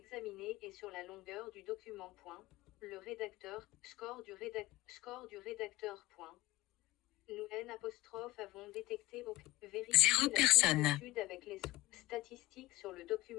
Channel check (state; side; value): quieter; right; 17.8 dB